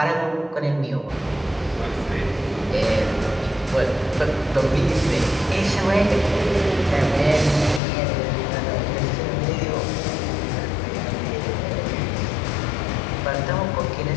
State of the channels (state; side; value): drops out; right; at 7.8 s